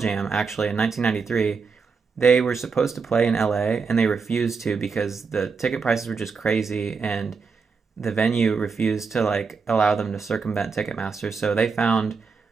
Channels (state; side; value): quieter; left; 5.1 dB